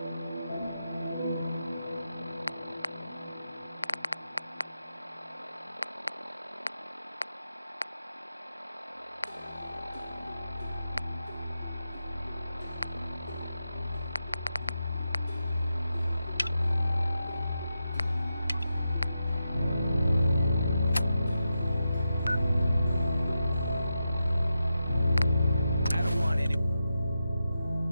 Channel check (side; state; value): both; inverted; correlation -0.89